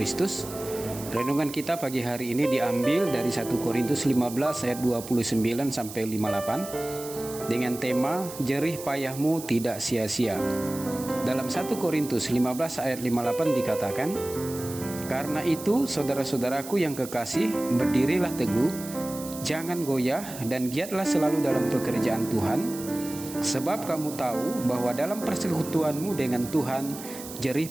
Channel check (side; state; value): right; noise; hiss, 13 dB below the sound